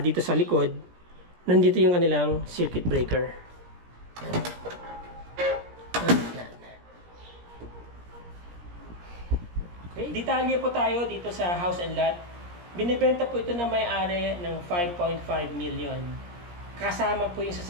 dito sa likod, nandito yung kanilang circuit breaker. Okay. Detalye po tayo dito sa house and lot. Binibenta po ito ng may-ari ng 5.5 million. Kasama po yung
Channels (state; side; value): late; left; 17 ms